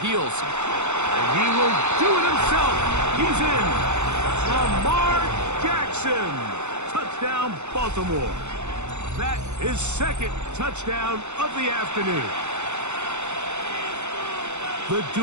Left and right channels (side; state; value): left; late; 0.82 ms